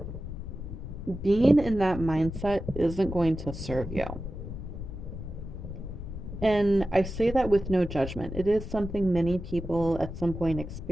being in that mindset isn't going to serve you. And I say that with no judgment. It is something many people at some point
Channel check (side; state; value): left; noise; rumble, 8 dB below the sound